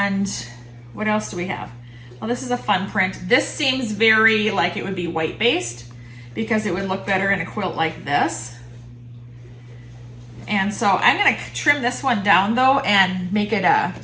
what else do we have? Well, this is a fun print. This seems very like it would be white based because it would look better in a quilt like this. And so I'm gonna trim this one down though and make it a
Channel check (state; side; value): identical; both; correlation 1.00